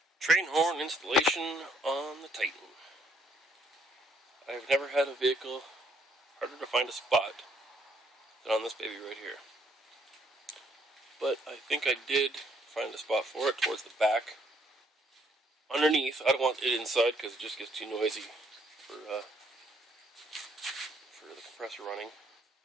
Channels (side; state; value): both; normal; correlation 0.68